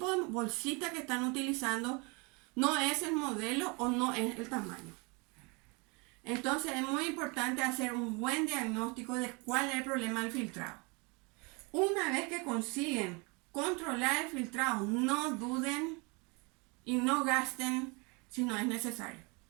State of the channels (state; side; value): quieter; left; 29.7 dB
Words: de bolsita que están utilizando no es el modelo o no es el tamaño. Entonces es muy importante hacer un buen diagnóstico de cuál es el problema del filtrado. Una vez que consiguen controlar el filtrado, no duden y no gasten si no es necesario.